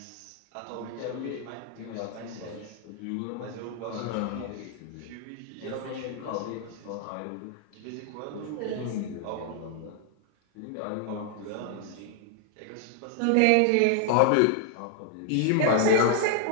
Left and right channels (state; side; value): different; both; correlation 0.00